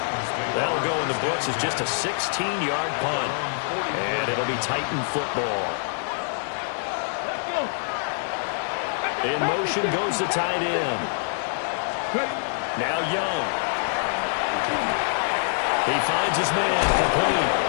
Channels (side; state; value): right; silent; digital silence